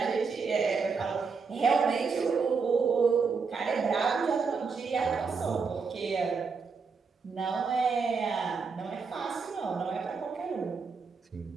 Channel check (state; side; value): quieter; left; 5.1 dB